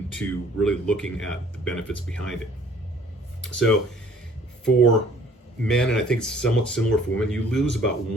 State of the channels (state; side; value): normal; both; correlation 0.56